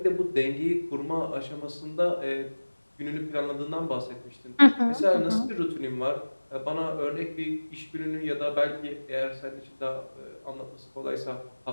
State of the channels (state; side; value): inverted; both; correlation -1.00